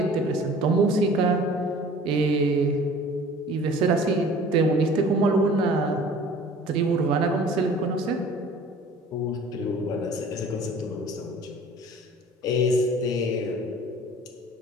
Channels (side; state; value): both; normal; correlation 0.47